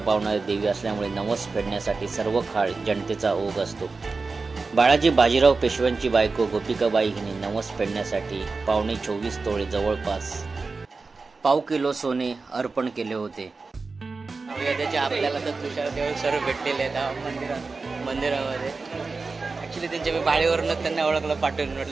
देवी असल्यामुळे नवस फेडण्यासाठी सर्व काळ जनतेचा ओघ असतो. बाळाजी बाजीराव पेशव्यांची बायको गोपिकाबाई हिने नवस फेडण्यासाठी 24.25 तोळे जवळपास पाव किलो सोने अर्पण केले होते. त्याचे आपल्याला तर तुषार देव सर्व भेटलेले आहेत मंदिरामध्ये. ऍक्च्युली त्यांच्या मी बाळीवरूनच त्यांना ओळखलं, पाठवून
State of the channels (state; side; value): quieter; left; 4.1 dB